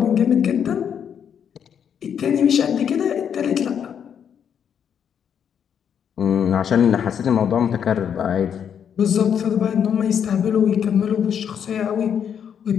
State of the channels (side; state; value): right; quieter; 8.2 dB